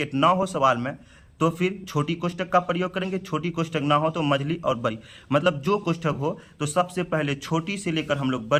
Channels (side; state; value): both; identical; correlation 1.00